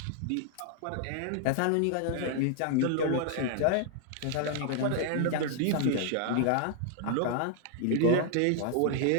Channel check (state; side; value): different; both; correlation 0.00